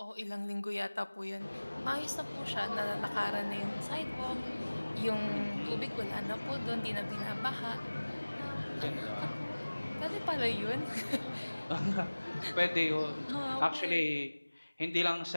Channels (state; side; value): inverted; both; correlation -1.00